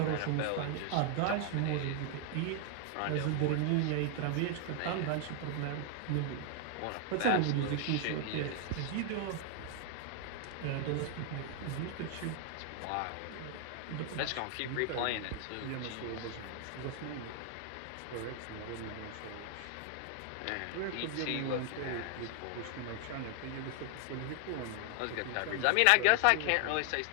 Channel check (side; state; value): both; different; correlation 0.00